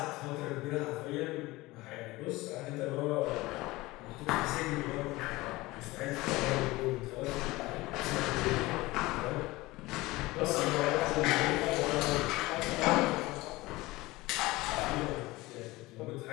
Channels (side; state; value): right; quieter; 20.2 dB